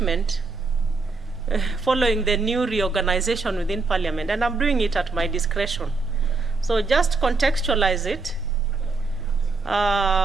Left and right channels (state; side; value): quieter; left; 3.9 dB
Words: following the new reorganization within Parliament, and I'm doing it at my discretion. So just contextualize it.